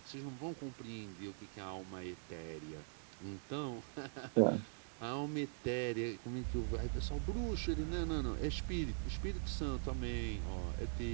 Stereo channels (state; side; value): silent; left; digital silence